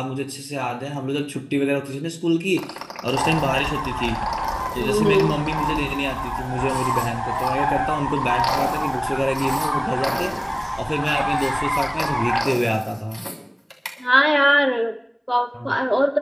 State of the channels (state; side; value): identical; both; correlation 1.00